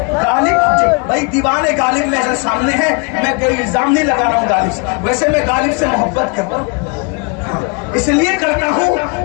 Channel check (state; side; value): quieter; right; 33.3 dB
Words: غالب بھائی دیوان غالب میرے سامنے ہے, میں کوئی الزام نہیں لگا رہا ہوں غالب سے, ویسے میں غالب سے محبت کرتا ہوں, اس لیے کرتا ہوں